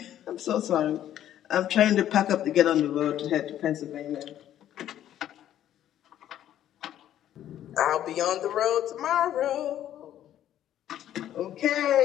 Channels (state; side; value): quieter; right; 11.5 dB